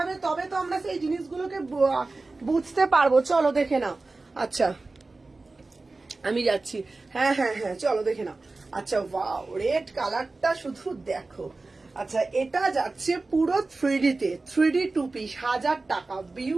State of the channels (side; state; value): left; quieter; 3.4 dB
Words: তবে তো আমরা সেই জিনিসগুলোকে বুঝতে পারবো। চলো দেখে নাও। আচ্ছা আমি যাচ্ছি, হ্যাঁ হ্যাঁ হ্যাঁ চলো দেখে নাও। আচ্ছা ওয়াও রেড কালারটা শুধু দেখো। আচ্ছা এটা যাচ্ছে পুরো 3D তে, 3D 2 পিস 1000 টাকা,